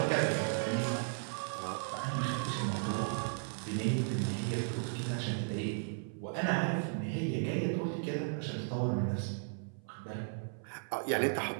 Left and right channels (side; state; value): left; silent; 54 dB below the other